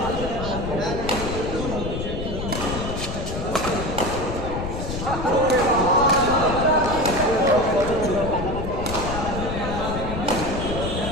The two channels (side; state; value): left; noise; rumble, 5 dB below the sound